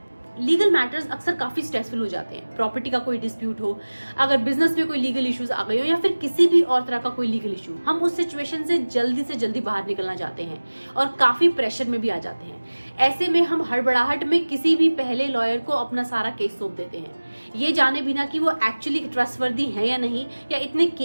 Legal matters अक्सर काफी स्ट्रेसफुल हो जाते हैं। प्रॉपर्टी का कोई डिस्प्यूट हो, अगर बिजनेस में कोई लीगल इश्यूज आ गए हो या फिर किसी भी और तरह का कोई लीगल इशू, हम उस सिचुएशन से जल्दी बाहर निकलना चाहते हैं और काफी प्रेशर में भी आ जाते हैं। ऐसे में हम हड़बड़ाहट में किसी भी पहले लॉयर को अपना सारा केस सौंप देते हैं, ये जाने बिना कि वो एक्चुअली ट्रस्टवर्दी है या नहीं, या इतने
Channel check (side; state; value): both; inverted; correlation -1.00